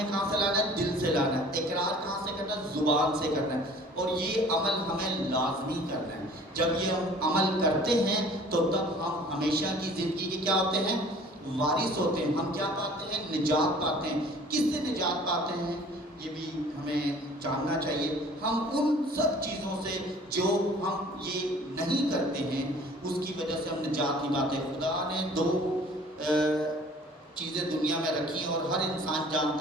کہاں سے لانا ہے؟ دل سے لانا ہے۔ اقرار کہاں سے کرنا ہے؟ زبان سے کرنا ہے۔ اور یہ عمل ہمیں لازمی کرنا ہے۔ جب یہ ہم عمل کرتے ہیں تو تب ہم ہمیشہ کی زندگی کے کیا ہوتے ہیں؟ وارث ہوتے ہیں۔ ہم کیا پاتے ہیں؟ نجات پاتے ہیں۔ کس سے نجات پاتے ہیں؟ یہ بھی ہمیں جاننا چاہیے۔ ہم ان سب چیزوں سے جو ہم یہ نہیں کرتے ہیں اس کی وجہ سے ہم نجات نہیں پاتے۔ خدا نے 2 چیزیں دنیا میں رکھی ہیں اور ہر انسان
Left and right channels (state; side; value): normal; both; correlation 0.49